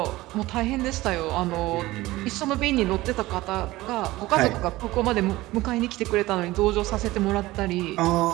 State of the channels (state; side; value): quieter; left; 18.4 dB